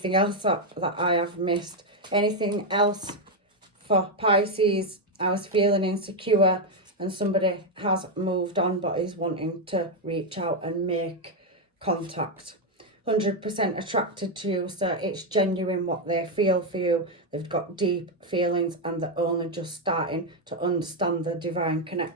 else that I have missed. Anything else for Pisces? I was feeling insecure, and somebody has moved on but is wanting to reach out and make contact. 100% attracted to you, so it's genuine what they feel for you. They've got deep feelings and they're only just starting to understand the divine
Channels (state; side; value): normal; both; correlation 0.03